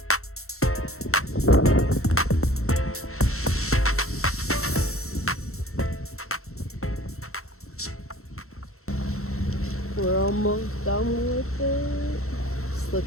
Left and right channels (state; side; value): late; right; 0.63 ms